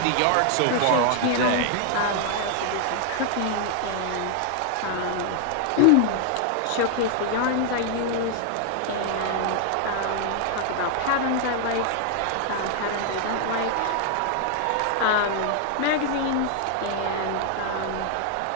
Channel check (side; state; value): both; different; correlation 0.00